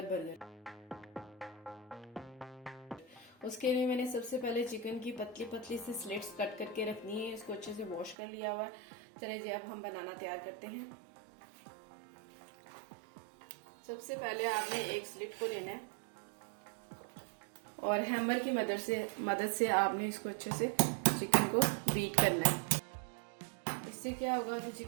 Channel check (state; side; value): drops out; left; at 8.2 s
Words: बर्गर। उसके लिए मैंने सबसे पहले चिकन की पतली पतली सी स्लिट्स कट करके रखनी है। इसको अच्छे से वॉश कर लिया हुआ है। चलिए जी, अब हम बनाना तैयार करते हैं। सबसे पहले आपने एक स्लिट को लेना है और हैमर की मदद से आपने इसको अच्छे से चिकन को बीट करना है। इससे क्या होगा, जो